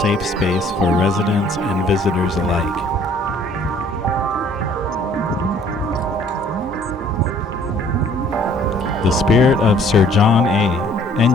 space for residents and visitors alike. The Spirit of Sir John A.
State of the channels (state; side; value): normal; both; correlation 0.57